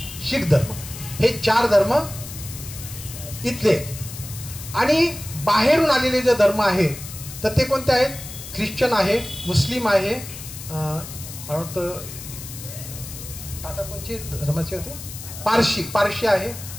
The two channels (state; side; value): noise; left; hiss, 12 dB below the sound